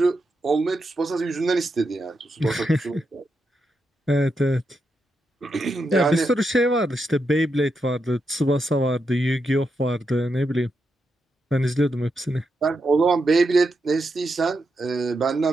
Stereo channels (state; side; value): normal; both; correlation 0.85